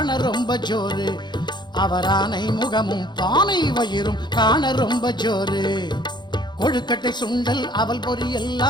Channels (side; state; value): right; late; 0.21 ms